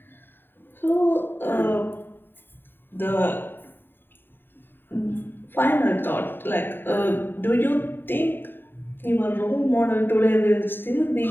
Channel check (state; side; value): late; right; 0.097 ms